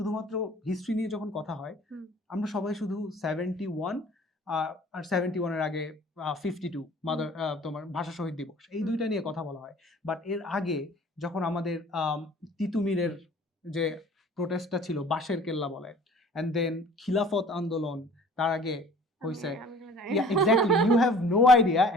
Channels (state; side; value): normal; both; correlation 0.49